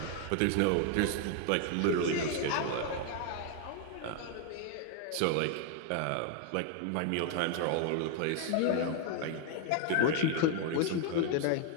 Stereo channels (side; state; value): both; different; correlation 0.01